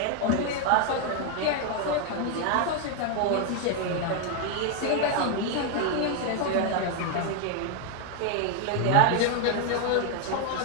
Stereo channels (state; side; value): different; both; correlation 0.01